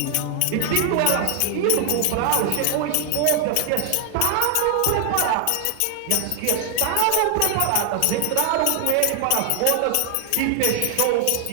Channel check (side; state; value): both; different; correlation 0.00